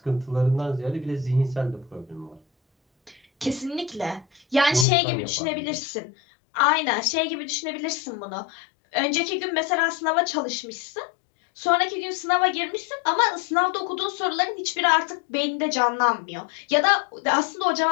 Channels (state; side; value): drops out; right; at 4.9 s